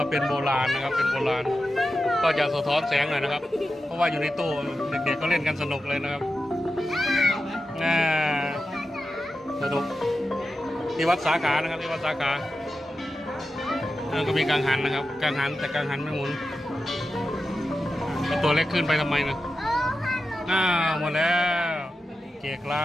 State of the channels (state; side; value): normal; both; correlation 0.91